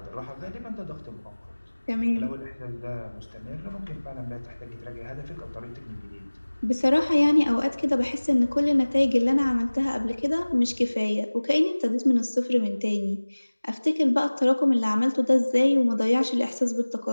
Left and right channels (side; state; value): both; inverted; correlation -1.00